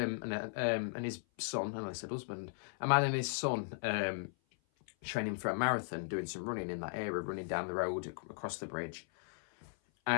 his son, and I said husband, a man and his son training for a marathon, doing some running in that area, running down the road across the bridge.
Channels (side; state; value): right; silent; 53 dB below the other